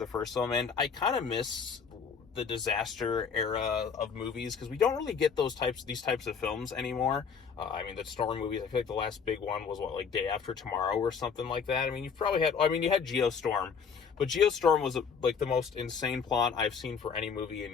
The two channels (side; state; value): right; quieter; 6.2 dB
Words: first film, and I kind of miss the disaster era of movies because we don't really get these types of films anymore. The storm movies, I feel like the last big one was Day After Tomorrow or something like that. You've probably had, you had Geostorm, but Geostorm was the most insane plot I've seen for any movie